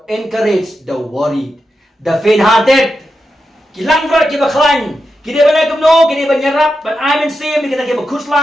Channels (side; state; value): both; normal; correlation 0.88